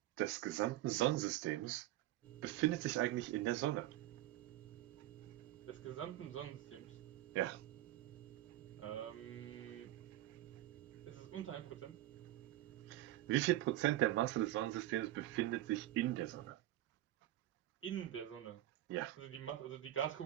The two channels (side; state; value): left; quieter; 14.7 dB